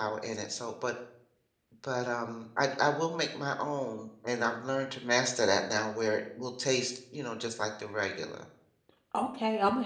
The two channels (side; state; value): both; identical; correlation 1.00